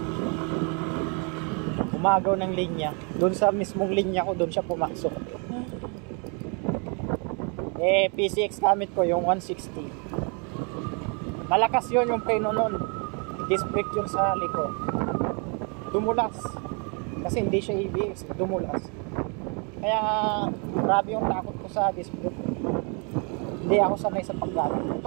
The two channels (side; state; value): left; quieter; 35.7 dB